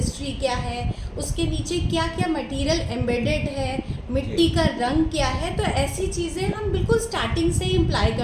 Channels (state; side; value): identical; both; correlation 1.00